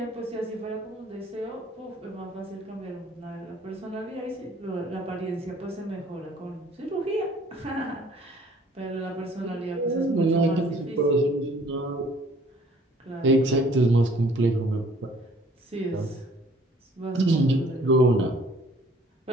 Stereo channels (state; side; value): normal; both; correlation 0.56